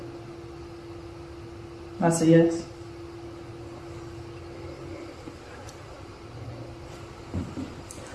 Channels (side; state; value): both; identical; correlation 1.00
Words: That's a yes.